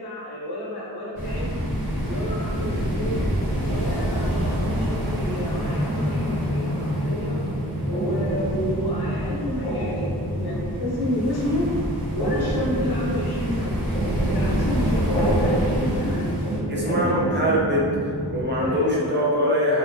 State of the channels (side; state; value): both; normal; correlation 0.42